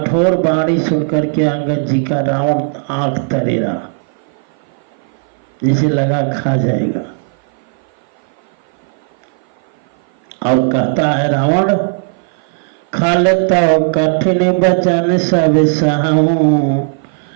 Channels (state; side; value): silent; left; 56 dB below the other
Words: बाणी सुनकर के अंगद जी का रावण आंख तरेरा, जिसे लगा खा जाएगा। और कहता है रावण, खलता कठिन बचन सब सहूं,